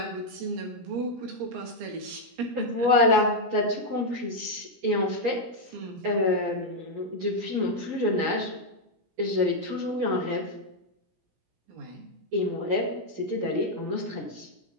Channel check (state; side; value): late; left; 17 ms